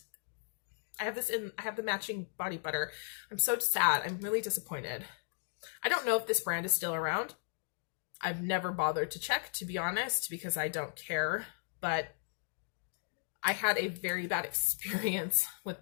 I have the matching body butter. I'm so sad. I'm really disappointed. I don't know if this brand is still around. I've never bothered to check, to be honest, because I don't care, but I had a very bad experience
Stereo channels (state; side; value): silent; right; digital silence